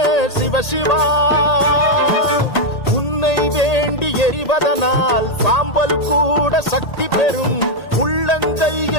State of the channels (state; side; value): late; right; 1.8 ms